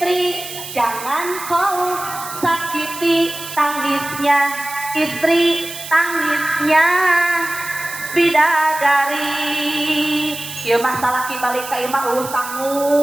jangan kau sakiti tangisnya istri, tangisnya bidadari. Ieu masalah kibalik ka imah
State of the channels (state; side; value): noise; right; hiss, 11 dB below the sound